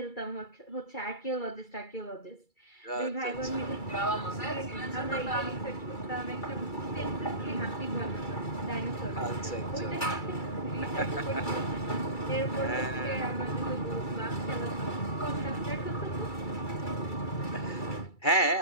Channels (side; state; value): right; late; 2.3 ms